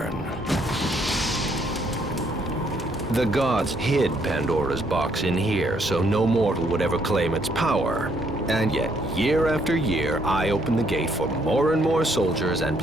The gods hid Pandora's box in here, so no mortal would ever claim its power. And yet, year after year, I open the gate for more and more soldiers and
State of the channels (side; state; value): both; normal; correlation 0.69